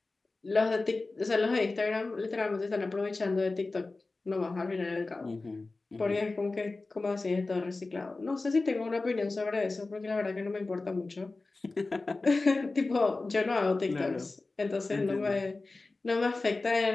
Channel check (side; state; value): right; quieter; 3.5 dB